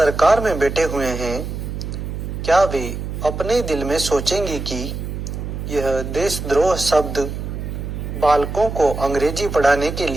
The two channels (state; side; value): noise; right; hum, 6 dB below the sound